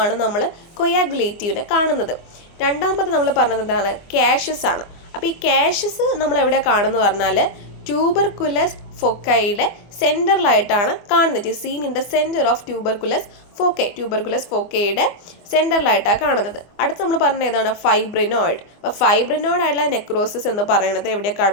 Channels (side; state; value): right; late; 24 ms